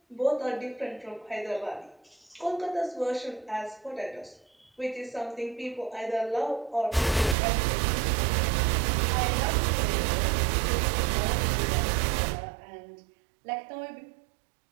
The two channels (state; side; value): drops out; left; at 7.4 s